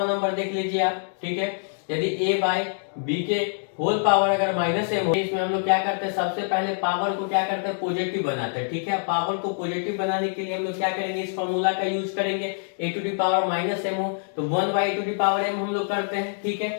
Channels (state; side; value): silent; right; digital silence